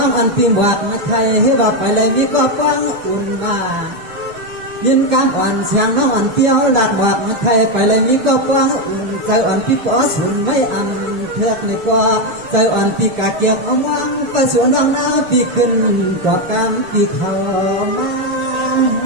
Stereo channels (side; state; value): left; late; 6.5 ms